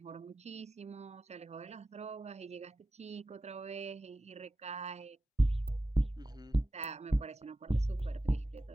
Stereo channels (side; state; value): both; normal; correlation 0.93